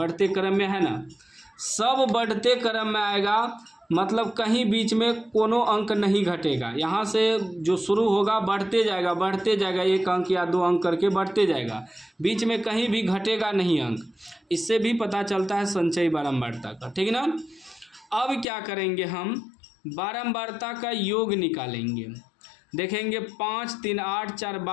क्रम में है ना, सब बढ़ते क्रम में आएगा, मतलब कहीं बीच में कोनो अंक नहीं घटेगा। यहाँ से जो शुरू होगा बढ़ते जाएगा, बढ़ते जाएगा, 1 अंक या 2 अंक करके बढ़ते जाएगा, बीच में कहीं भी घटेगा नहीं अंक। इससे भी पता चलता है संचयी बारंबारता का, ठीक ना। अब क्या करेंगे? हम बारंबारता का योग निकालेंगे। देखेंगे 5 3 8 4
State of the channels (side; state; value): right; drops out; at 18.4 s